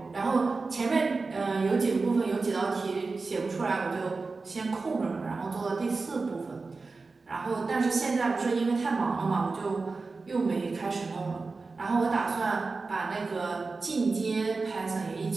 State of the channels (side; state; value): left; quieter; 4.0 dB